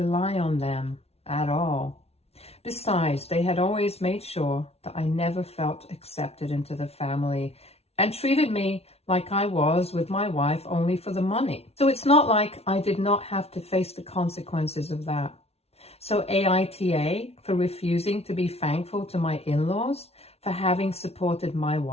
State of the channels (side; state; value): right; late; 0.30 ms